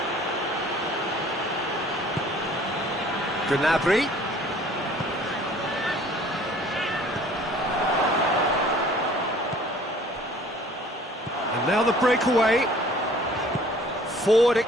Gnabry. And now the breakaway. Forward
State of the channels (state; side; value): normal; both; correlation 0.52